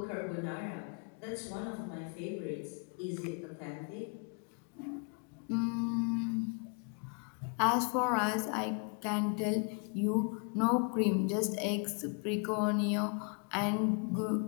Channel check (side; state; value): right; quieter; 38.6 dB